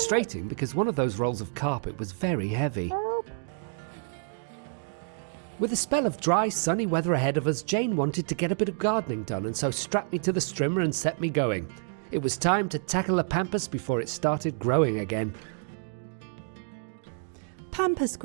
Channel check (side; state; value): left; silent; digital silence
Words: because one of those rolls of carpet was very heavy. With a spell of dry, sunny weather ahead of us, Jane wanted to get a bit of gardening done and so strapped me to the strimmer and set me going. It was time to tackle the pampas before it started growing again. Pampas